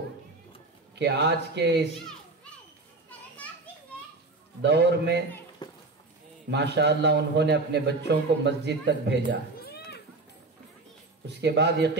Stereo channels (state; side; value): quieter; left; 3.3 dB